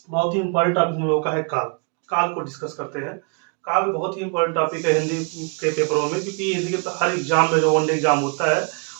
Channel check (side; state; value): left; quieter; 36.7 dB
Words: बहुत ही इंपॉर्टेंट टॉपिक हम लोगों का है काल। काल को डिस्कस करते हैं। काल बहुत ही इंपॉर्टेंट टॉपिक है हिंदी के पेपरों में, क्योंकि हिंदी के हर एग्जाम में जो वनडे एग्जाम होता है